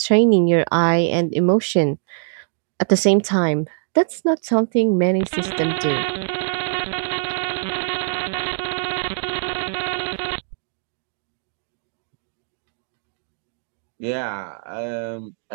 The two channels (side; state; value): left; silent; digital silence